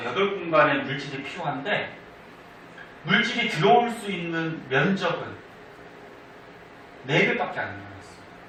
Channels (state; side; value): identical; both; correlation 1.00